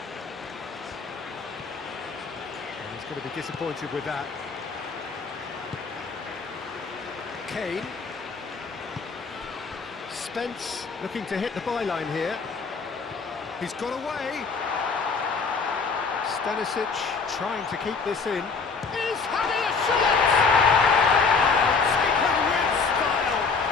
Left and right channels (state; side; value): quieter; right; 4.9 dB